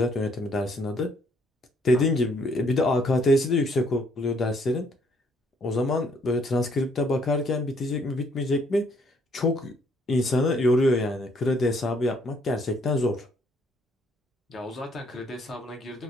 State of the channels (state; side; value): normal; both; correlation 0.66